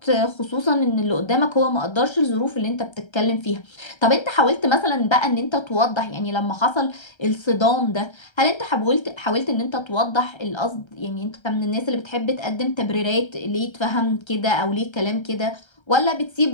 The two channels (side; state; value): right; late; 1.3 ms